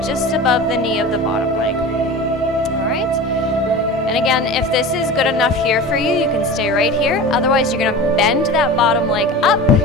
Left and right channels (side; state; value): both; normal; correlation 0.33